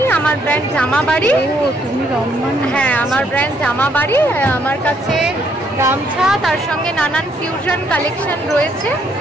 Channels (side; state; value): both; normal; correlation 0.70